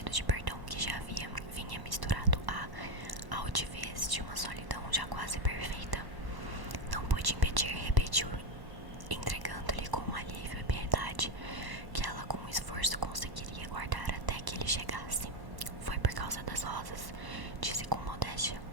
de perdão que já vinha misturado à altivez de uma solidão já quase perfeita. Não pude impedir, repetiu, entregando-lhe com alívio e piedade que ela com esforço conseguiria guardar até que ele chegasse. Foi por causa das rosas, disse com modéstia,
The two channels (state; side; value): late; left; 1.1 ms